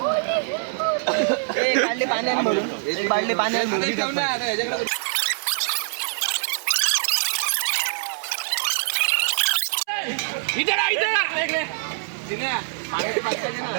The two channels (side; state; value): left; silent; 57 dB below the other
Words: बाटली पाण्याने भरून बाटली पाण्याने भरून